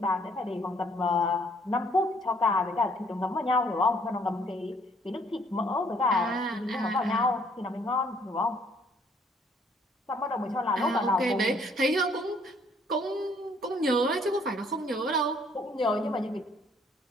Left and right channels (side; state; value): both; normal; correlation 0.64